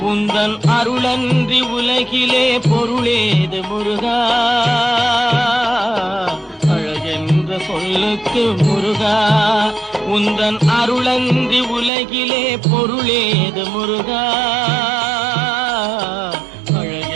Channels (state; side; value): drops out; left; at 11.9 s